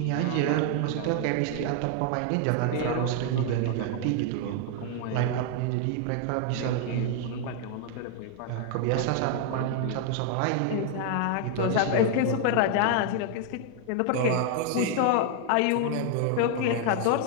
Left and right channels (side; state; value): both; different; correlation 0.00